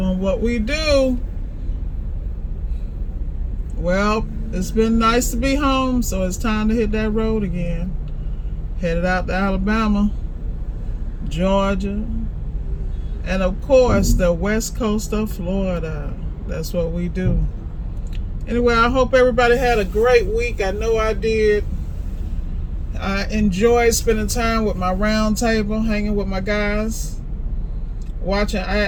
what we do. Well, it's been nice to be home, so it's time to hit that road again. Headed out to Alabama, Georgia, and of course, the west coast of Florida. That's what we do. Anyway, I hope everybody had a great week. I know I did. I enjoyed spending time with my round table, hanging with my guys, watching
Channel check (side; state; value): both; identical; correlation 1.00